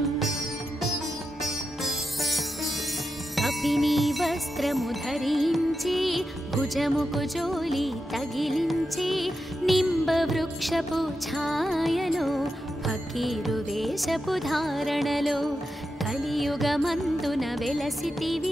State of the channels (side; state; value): both; normal; correlation 0.88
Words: कपिनी वस्त्रमु धరించి भुजमुकु जोली तगिलिంచి निंबवृक्षपु छायलो फकीरु वेषपु धारणलो కలియుగమందున